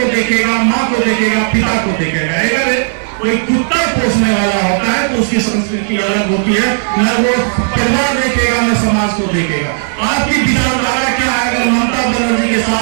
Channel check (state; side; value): silent; left; digital silence